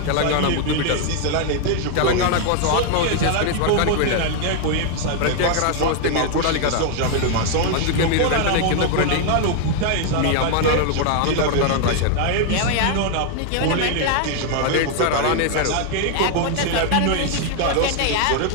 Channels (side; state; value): both; different; correlation 0.00